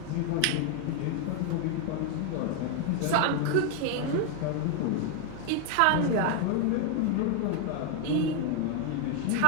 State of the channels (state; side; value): different; both; correlation 0.00